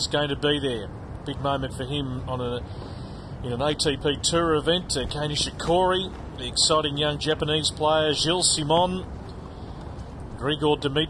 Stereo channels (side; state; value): both; identical; correlation 1.00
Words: going to be there. Big moment for him in an ATP Tour event. Kei Nishikori, the exciting young Japanese player, Gilles Simon, Grigor